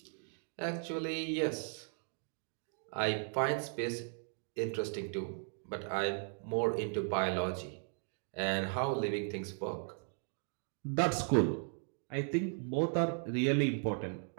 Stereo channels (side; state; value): left; silent; 53 dB below the other